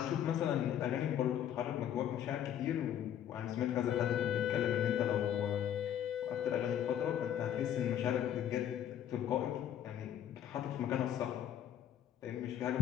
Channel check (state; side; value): quieter; right; 10.2 dB